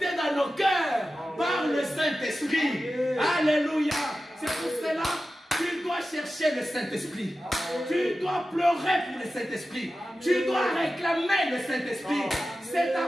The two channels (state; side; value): normal; both; correlation 0.93